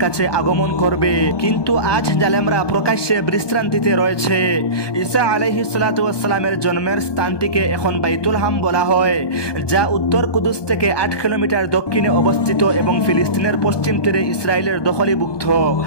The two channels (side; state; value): right; late; 1.2 ms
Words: কাছে আগমন করবে। কিন্তু আজ জালেমরা প্রকাশ্যে বিশ্রান্তিতে রয়েছে। ঈসা আলাইহিস সালাতু ওয়াস সালামের জন্মের স্থানটিকে এখন বাইতুল হাম বলা হয়, যা উত্তর কুদুস থেকে 8 কিলোমিটার দক্ষিণে অবস্থিত এবং ফিলিস্তিনের পশ্চিম তীরে ইসরায়েলের দখলীভুক্ত।